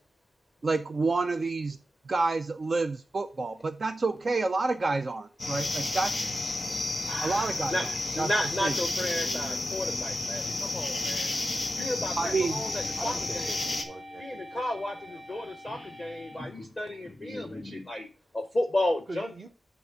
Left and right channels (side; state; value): both; normal; correlation 0.91